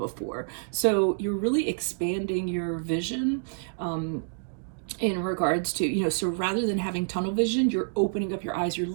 So you're really expanding your vision, in regards to, so rather than having tunnel vision, you're opening up your eyes, you're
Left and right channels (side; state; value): left; silent; digital silence